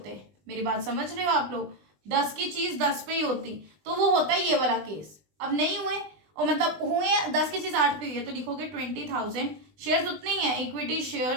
मेरी बात समझ रहे हो आप लोग, 10 की चीज 10 पे ही होती तो वो होता है ये वाला केस। अब नहीं हुए, और मतलब हुए 10 की चीज 8 पे हुई है, तो लिखोगे 20,000 शेयर्स उतने ही है, equity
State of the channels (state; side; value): late; left; 20 ms